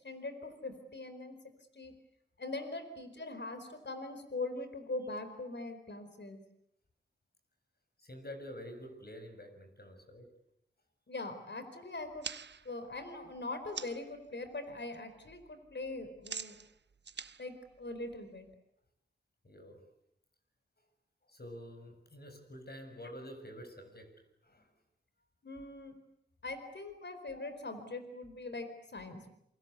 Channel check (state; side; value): normal; both; correlation 0.11